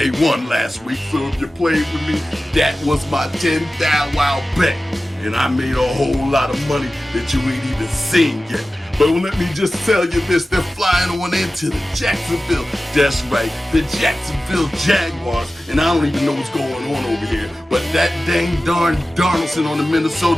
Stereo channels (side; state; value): both; normal; correlation 0.95